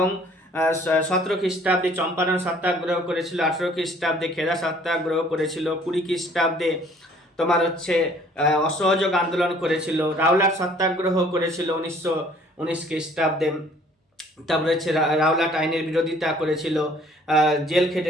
17 খ্রিস্টাব্দে চম্পারণ সত্যাগ্রহ করেছিল, 18 খ্রিস্টাব্দে খেদা সত্যাগ্রহ করেছিল, 20 খ্রিস্টাব্দে তোমার হচ্ছে অসহযোগ আন্দোলন করেছিল, রাওলাট সত্যাগ্রহ করেছিল 1919 খ্রিস্টাব্দে। তারপরে হচ্ছে রাওলাট আইনের বিরোধিতা করেছিল, জেল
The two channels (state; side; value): normal; both; correlation 0.57